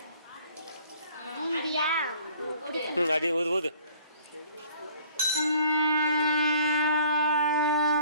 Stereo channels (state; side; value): inverted; both; correlation -0.55